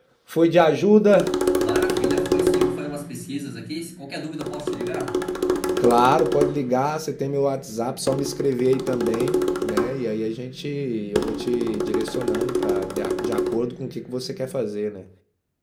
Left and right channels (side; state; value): both; identical; correlation 1.00